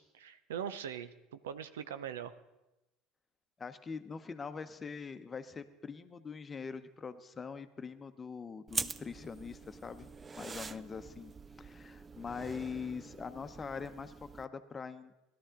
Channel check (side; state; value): both; normal; correlation 0.63